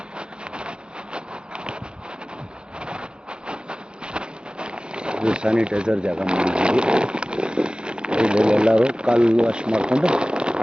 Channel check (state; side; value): late; left; 0.049 ms